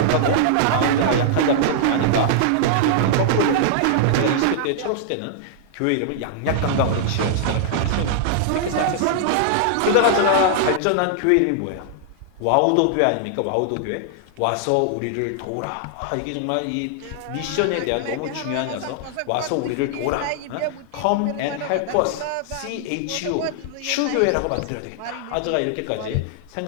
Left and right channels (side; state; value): both; different; correlation -0.01